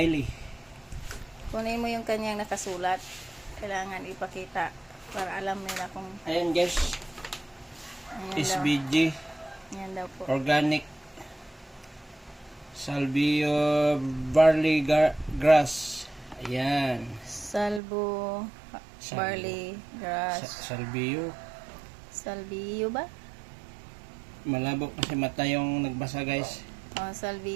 Kunin mo yung kanyang nakasulat. Kailangan ipakita para alam nila kung Ayan guys, ayan daw. SBG, Ayan daw po. organic, salvio, barley grass. Ayan. Salvo, barley, grass. Salvio. Salvio ba? Malabo kasi mata yung nagbasa guys.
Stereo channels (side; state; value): left; drops out; at 17.8 s